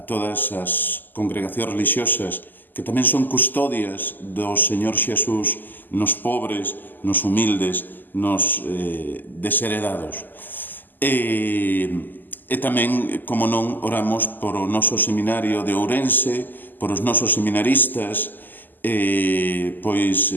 todas as congregacións religiosas que tamén son custodias do Señor Xesús nos pobres, nos humildes, nos desheredados. E tamén, como non, oramos por o noso seminario de Ourense, por os nosos seminaristas, pois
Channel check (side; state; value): right; late; 0.088 ms